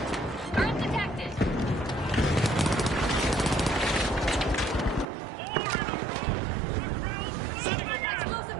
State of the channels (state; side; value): drops out; left; at 5.1 s